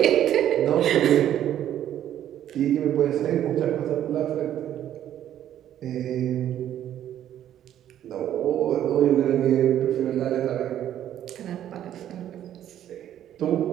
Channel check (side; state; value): left; quieter; 11.2 dB